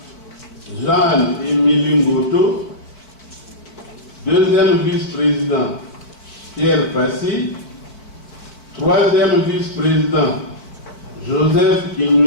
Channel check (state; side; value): late; right; 4.5 ms